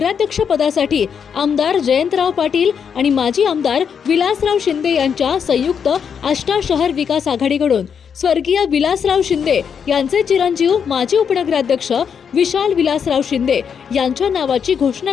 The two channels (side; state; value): right; quieter; 7.1 dB